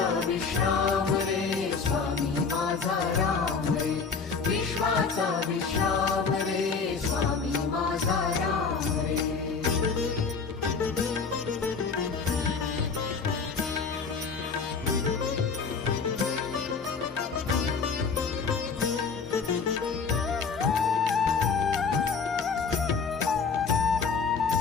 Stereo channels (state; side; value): quieter; right; 5.2 dB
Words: विश्राम रे स्वामी माझा राम रे, विश्वाचा विश्राम रे स्वामी माझा राम रे।